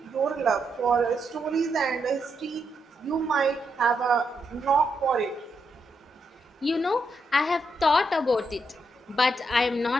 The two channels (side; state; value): both; normal; correlation 0.81